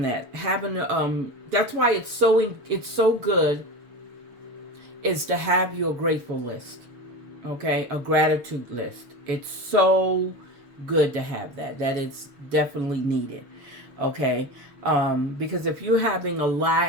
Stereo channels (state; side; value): late; left; 6.7 ms